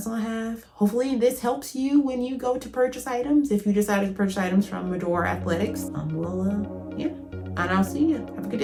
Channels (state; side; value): identical; both; correlation 1.00